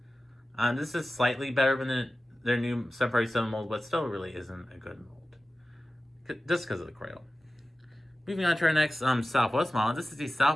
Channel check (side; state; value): both; normal; correlation 0.95